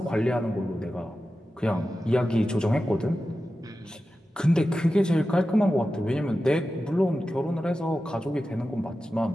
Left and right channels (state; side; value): normal; both; correlation 0.93